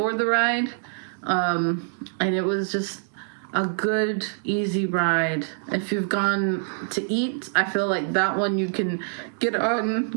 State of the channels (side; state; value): left; silent; digital silence